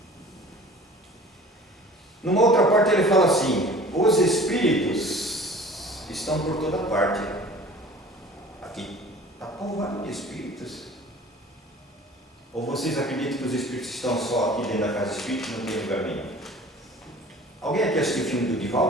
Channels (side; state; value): both; normal; correlation 0.45